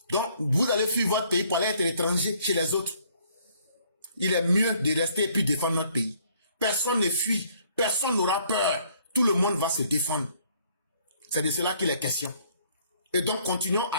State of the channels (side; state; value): both; inverted; correlation -0.63